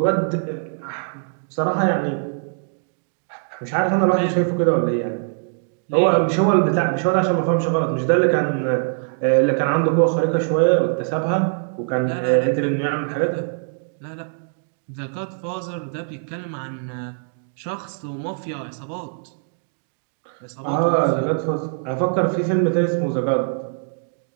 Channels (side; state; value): left; silent; 64 dB below the other